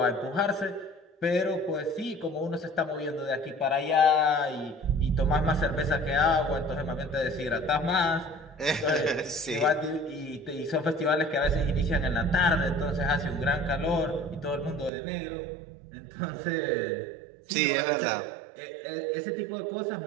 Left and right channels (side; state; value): left; drops out; at 14.9 s